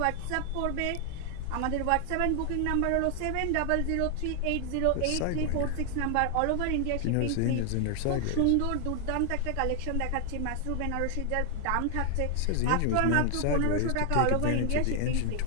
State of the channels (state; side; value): different; both; correlation 0.00